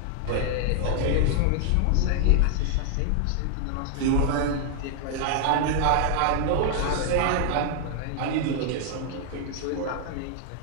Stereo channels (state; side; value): different; both; correlation 0.00